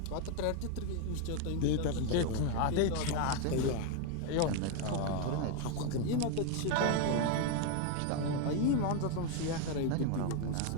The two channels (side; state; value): both; different; correlation 0.02